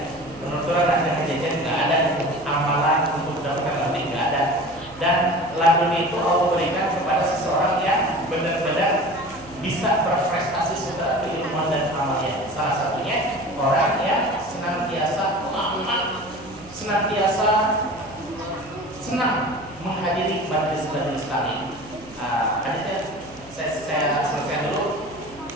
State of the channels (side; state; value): right; noise; hum, 21 dB below the sound